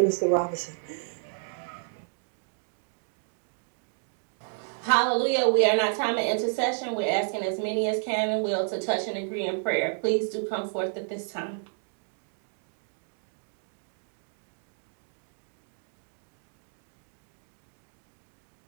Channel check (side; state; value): left; silent; digital silence